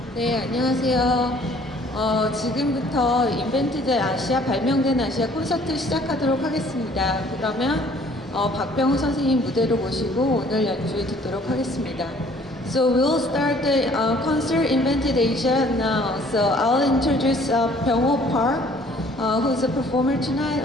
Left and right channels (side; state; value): both; normal; correlation 0.57